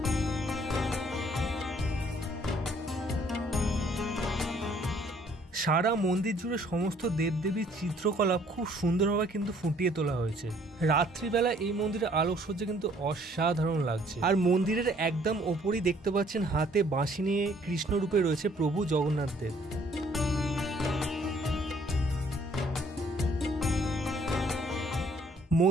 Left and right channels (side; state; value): both; normal; correlation 0.61